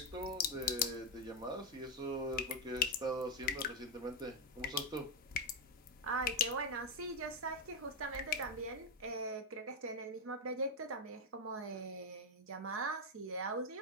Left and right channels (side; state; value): both; normal; correlation 0.04